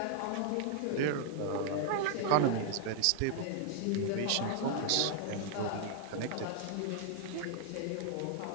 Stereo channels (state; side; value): different; both; correlation -0.01